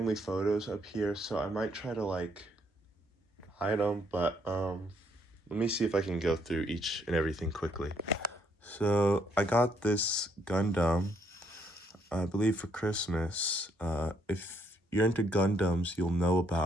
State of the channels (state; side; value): normal; both; correlation 0.71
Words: photos up here, so I might try to like hide them, but let me see if I can go through each and everything quickly. So I got this Gundam, I believe for Christmas. If you're into Gundams, you'll know